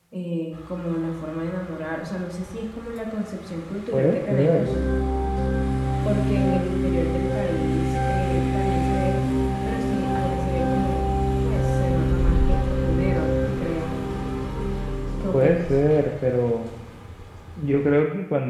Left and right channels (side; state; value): both; identical; correlation 1.00